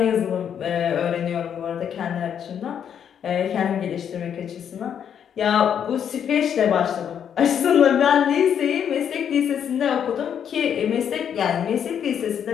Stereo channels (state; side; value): quieter; right; 8.5 dB